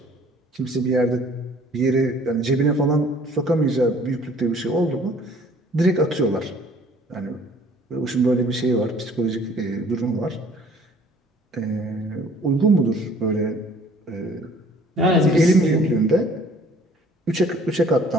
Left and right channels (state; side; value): normal; both; correlation 0.55